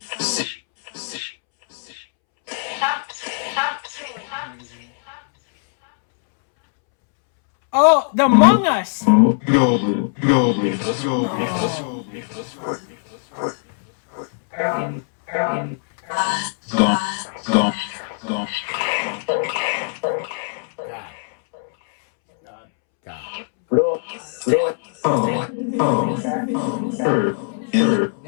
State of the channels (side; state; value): right; silent; 65 dB below the other